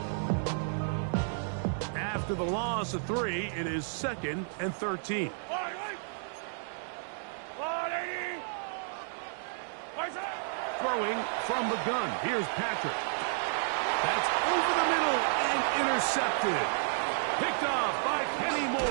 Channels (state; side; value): silent; left; digital silence